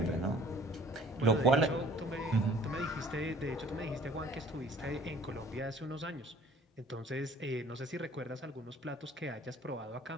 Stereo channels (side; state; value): both; normal; correlation 0.53